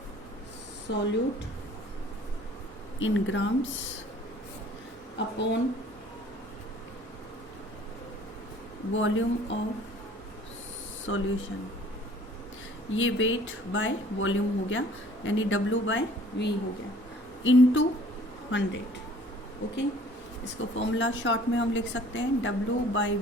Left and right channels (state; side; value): normal; both; correlation 0.53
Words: solute in grams upon volume of solution. ये वेट बाय वॉल्यूम हो गया, यानी W/V हो गया इनटू 100। ओके, इसको फॉर्मूला शॉर्ट में हम लिख सकते हैं